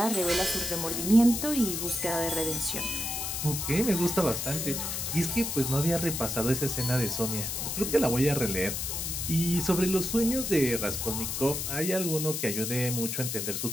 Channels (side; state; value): left; noise; hiss, 3 dB below the sound